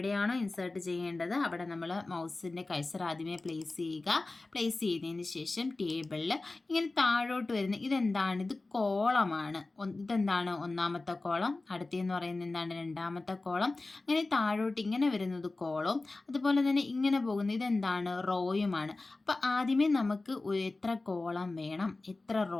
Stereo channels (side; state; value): right; quieter; 3.3 dB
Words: ഇൻസേർട്ട് ചെയ്യേണ്ടത് അവിടെ നമ്മൾ മൗസിൻ്റെ കഴ്സർ ആദ്യമേ പ്ലേസ് ചെയ്തതിന് ശേഷം ടേബിളിൽ ഇങ്ങനെ താഴോട്ട് വരുന്ന ഇതെന്താണ്? ഇത് കോളമാണ്. ഇതെന്താണ്? ഒന്നാമത്തെ കോളം. അടുത്തെന്ന് പറയുന്നത് എന്താണ്? രണ്ടാമത്തെ കോളം. അങ്ങനെ താഴോട്ട് ഇങ്ങനെ വരുന്നത് കോളവും അതുപോലെ തന്നെ ഇങ്ങനെ പോകുന്നത് ഇതെന്താണ്? റോയുമാണ്. അപ്പോൾ ആദ്യമേ നമുക്ക് എത്ര കോളം വേണം, എത്ര